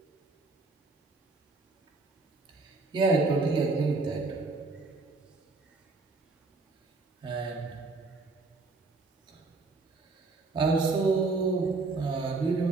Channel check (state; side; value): quieter; left; 3.7 dB